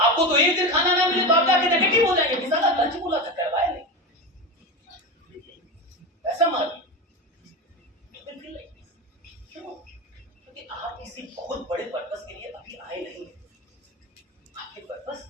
तो एक दिन खाना ना मिले तो आप जाके नेगेटिव हो जाएंगे, किसी का लंच बोला था करवाया नहीं, ऐसा मान क्यों? क्योंकि आप किसी बहुत बड़े पर्पस के लिए अभी आए नहीं, आपके पर्पस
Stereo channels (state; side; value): normal; both; correlation 0.20